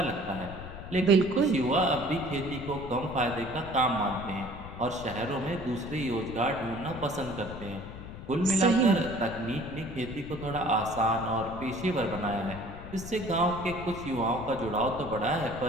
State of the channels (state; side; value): noise; left; rumble, 12 dB below the sound